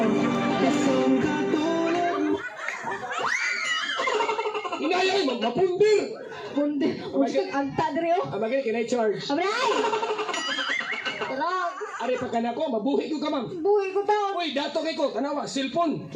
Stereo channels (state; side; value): identical; both; correlation 1.00